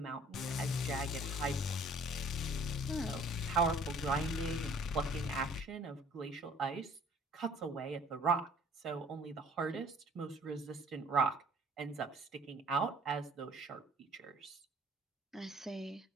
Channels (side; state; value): both; normal; correlation 0.54